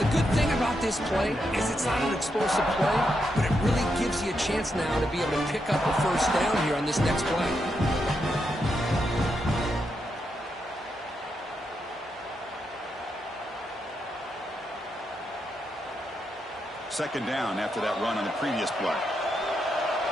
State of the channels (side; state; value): both; normal; correlation 0.83